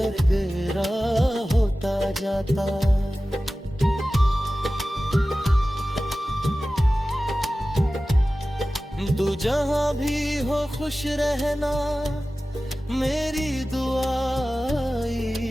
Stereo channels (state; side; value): normal; both; correlation 0.96